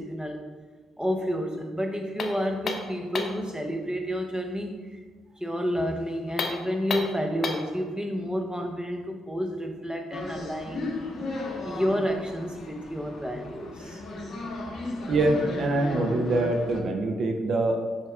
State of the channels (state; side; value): normal; both; correlation 0.82